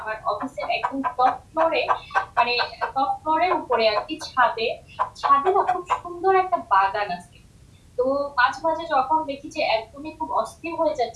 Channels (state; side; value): identical; both; correlation 1.00